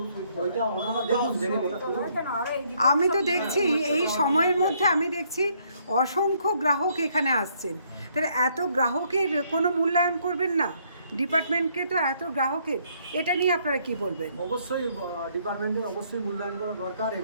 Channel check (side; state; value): both; inverted; correlation -0.69